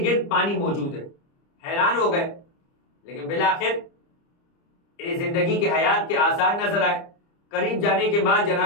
گرد پانی موجود ہے۔ حیران ہو گئے، لیکن بالآخر زندگی کے حیات کے آثار نظر آئے۔ قریب جانے کے بعد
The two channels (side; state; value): right; late; 30 ms